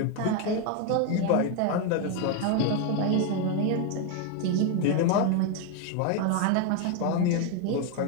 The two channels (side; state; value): both; different; correlation 0.01